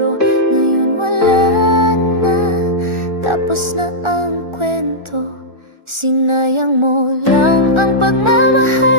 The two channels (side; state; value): left; late; 1.4 ms